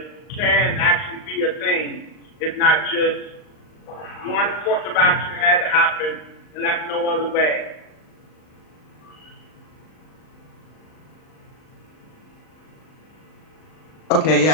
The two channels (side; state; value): right; late; 39 ms